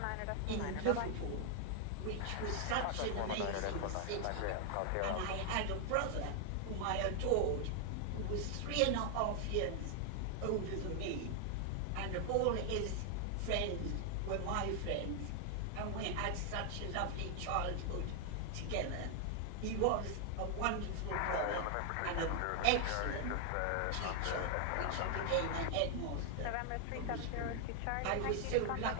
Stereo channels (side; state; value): both; different; correlation 0.00